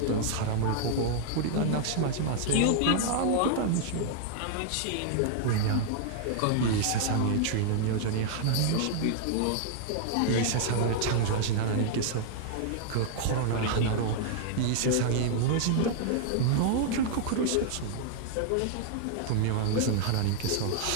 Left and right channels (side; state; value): both; different; correlation 0.00